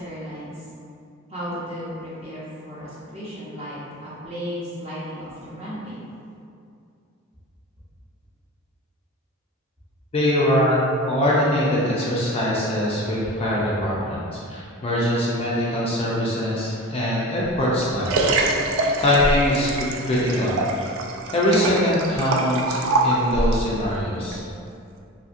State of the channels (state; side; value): normal; both; correlation 0.30